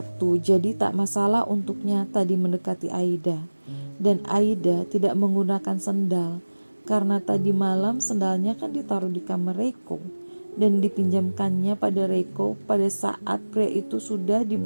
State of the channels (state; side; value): inverted; both; correlation -1.00